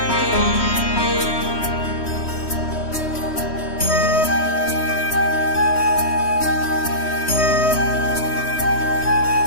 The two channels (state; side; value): late; right; 3.1 ms